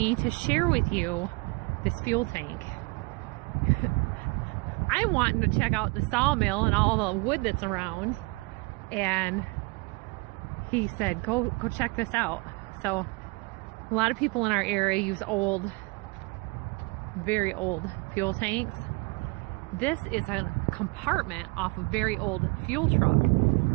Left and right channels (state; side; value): quieter; left; 28.9 dB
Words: to share with you this fuel tank. I'm wanting to check out the sawmill and all the wood that's around, and he said go check this out. So a lot of people in our area use old, very old fuel tanks. This is a compartment off a very old fuel truck.